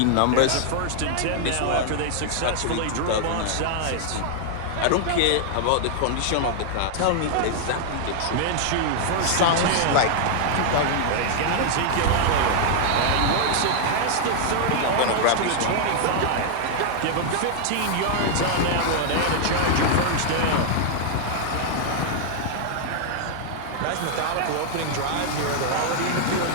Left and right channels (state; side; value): different; both; correlation -0.01